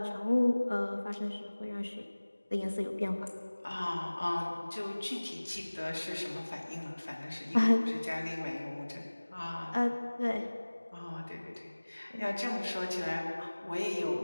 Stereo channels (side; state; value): both; inverted; correlation -1.00